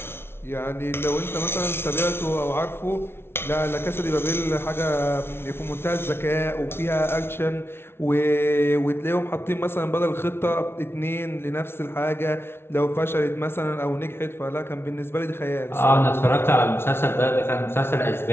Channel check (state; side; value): late; right; 0.12 ms